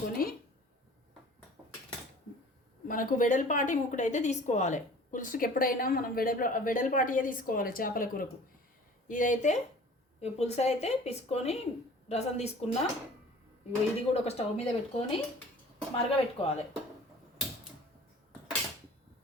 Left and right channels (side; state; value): both; normal; correlation 0.46